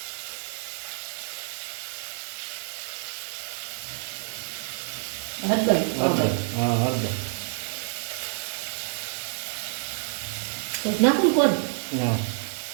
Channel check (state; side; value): silent; left; 56 dB below the other